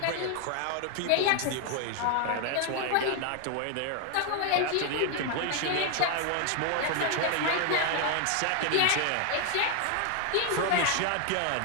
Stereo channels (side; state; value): both; different; correlation 0.00